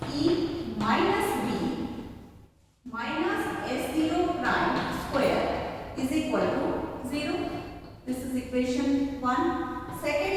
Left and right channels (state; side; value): identical; both; correlation 1.00